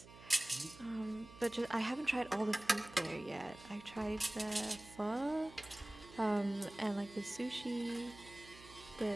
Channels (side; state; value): right; noise; hum, 19 dB below the sound